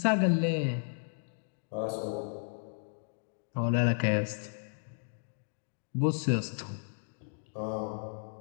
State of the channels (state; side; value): silent; right; digital silence